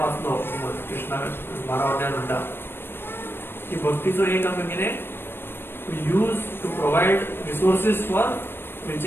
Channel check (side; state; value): right; late; 0.10 ms